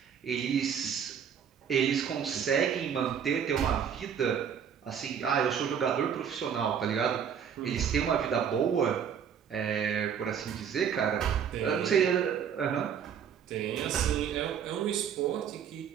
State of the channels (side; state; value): left; quieter; 7.9 dB